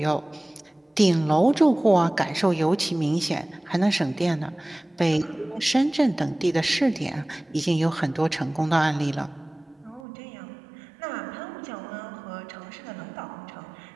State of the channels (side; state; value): left; drops out; at 10.0 s